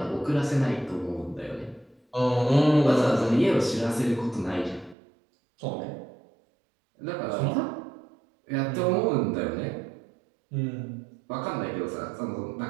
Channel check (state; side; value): drops out; left; at 5.0 s